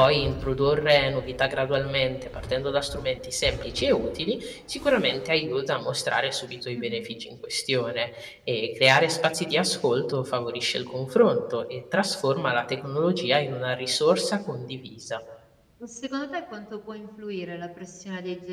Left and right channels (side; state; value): both; identical; correlation 1.00